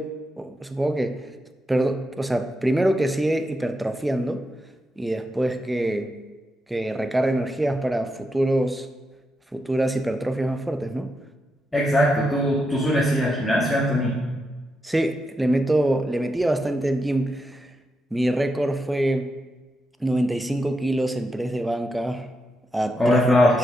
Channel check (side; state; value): both; normal; correlation 0.85